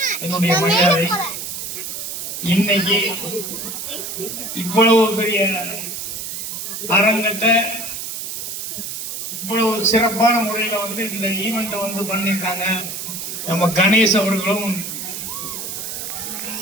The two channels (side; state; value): right; noise; hiss, 6 dB below the sound